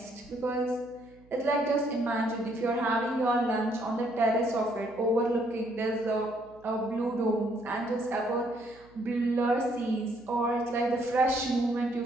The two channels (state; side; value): noise; right; hum, 27 dB below the sound